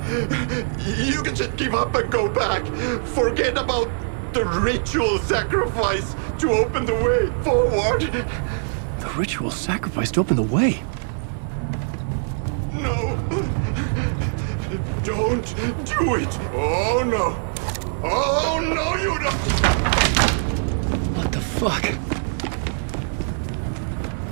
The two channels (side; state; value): left; silent; digital silence